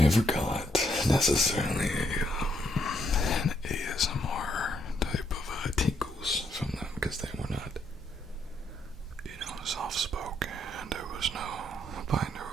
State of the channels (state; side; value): normal; both; correlation 0.74